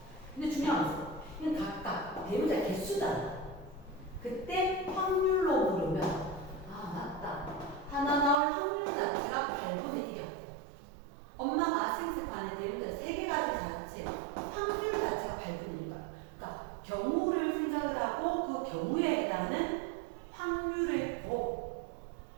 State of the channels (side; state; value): left; drops out; at 8.3 s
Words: 근데 중요한 것은 이건 각각 대문자 개수잖아. 그때 확률로 물으면 맞다. 하나 나올 확률 자체가 8분의 1이었고 엄마가 생습하는 대문자 3개 가질 자체 확률 자체가 8분의 1이야. 그러니까 경우를 생각을 하고 그 경우에 해당하는 확률의